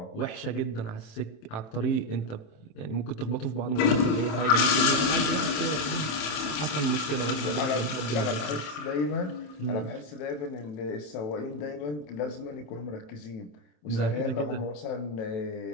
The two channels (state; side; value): late; right; 27 ms